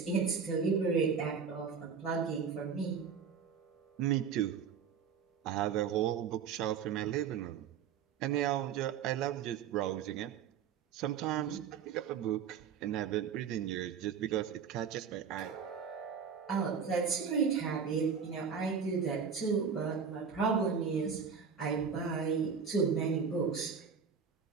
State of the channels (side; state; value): left; quieter; 6.7 dB